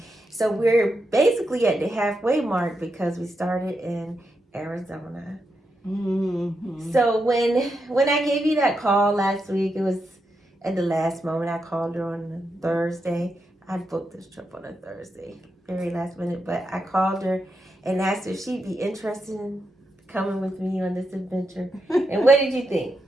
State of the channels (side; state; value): both; normal; correlation 0.85